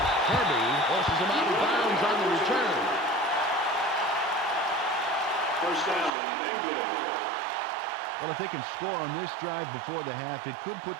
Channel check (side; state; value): left; drops out; at 6.1 s